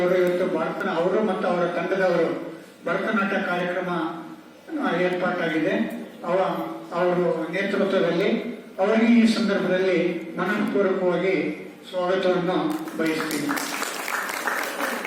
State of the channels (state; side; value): identical; both; correlation 1.00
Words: ಇವತ್ತು ಅವರು ಮತ್ತು ಅವರ ತಂಡದವರು ಭರತನಾಟ್ಯ ಕಾರ್ಯಕ್ರಮ ಏರ್ಪಾಟಾಗಿದೆ. ಅವರು ನೇತೃತ್ವದಲ್ಲಿ ಅವರಿಗೆ ಈ ಸಂದರ್ಭದಲ್ಲಿ ಮನಪೂರ್ವಕವಾಗಿ ಸ್ವಾಗತವನ್ನು ಬಯಸ್ತೀನಿ.